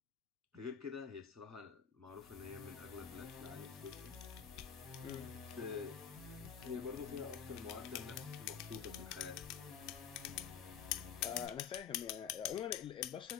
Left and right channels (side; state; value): right; quieter; 7.7 dB